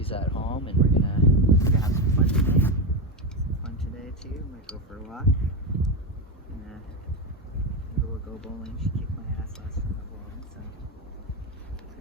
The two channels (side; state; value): both; normal; correlation 0.12